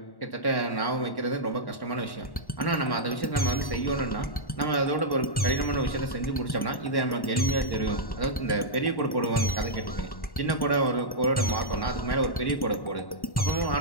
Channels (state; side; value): late; right; 1.1 ms